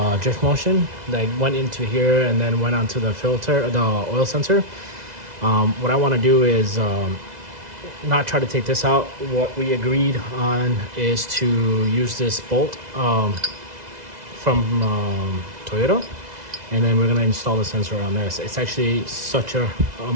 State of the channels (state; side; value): late; left; 2.0 ms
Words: Drift Motion that went into here and then went onto the filter, the oil sensor. What I want to do is not try to take this out. What we agreed on is to use this bolt from Toyota, and then we're going to install the sensor on this. It's actually such a